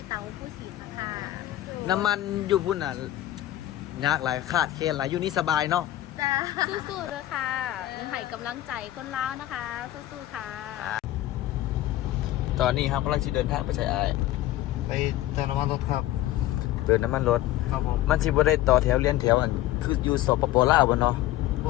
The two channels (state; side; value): quieter; right; 14.6 dB